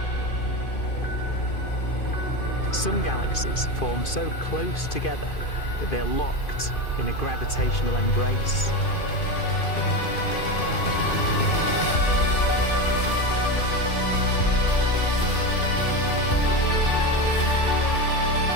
Some galaxies form so close together that they're locked in a gravitational embrace.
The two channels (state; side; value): late; right; 2.5 ms